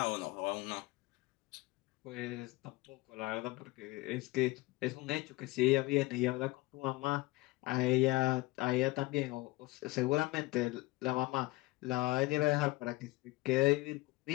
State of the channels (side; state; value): right; quieter; 21.2 dB